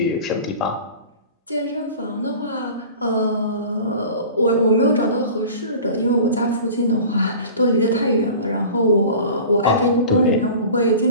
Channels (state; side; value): inverted; both; correlation -0.40